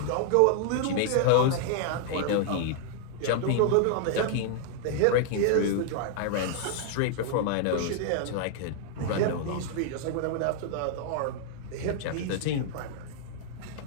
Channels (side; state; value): both; different; correlation -0.01